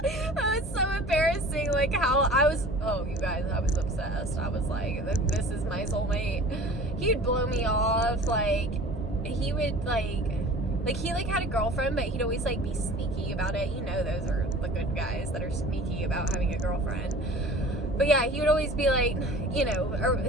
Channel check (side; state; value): both; normal; correlation 0.43